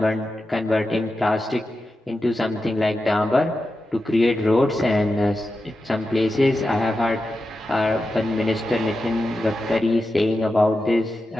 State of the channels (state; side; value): normal; both; correlation 0.90